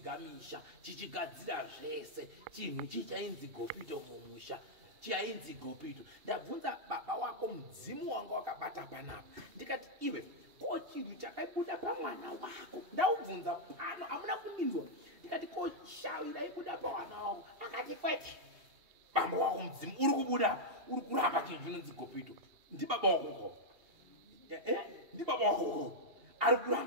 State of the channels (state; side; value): late; left; 2.8 ms